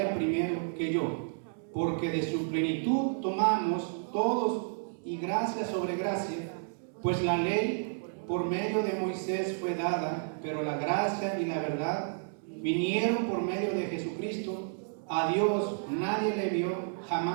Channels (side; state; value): left; silent; digital silence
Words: primero que yo. Porque de su plenitud tomamos todos y gracia sobre gracia, pues la ley por medio de Moisés fue dada, pero la gracia y la verdad vinieron por medio de Jesucristo. A Dios nadie le vio